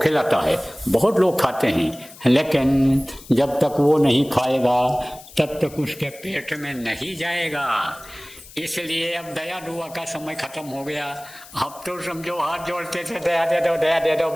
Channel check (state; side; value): noise; left; hiss, 19 dB below the sound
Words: है, बहुत लोग खाते हैं, लेकिन जब तक वो नहीं खाएगा तब तक उसके पेट में नहीं जाएगा। इसलिए अब दया दुआ का समय खत्म हो गया। अब तो समझो हाथ जोड़ते थे, दया दे दो,